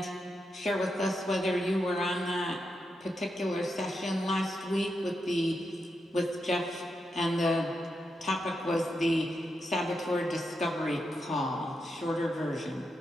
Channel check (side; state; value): both; normal; correlation 0.85